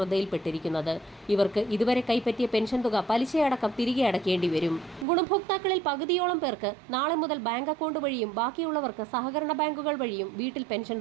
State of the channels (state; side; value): drops out; left; at 5.1 s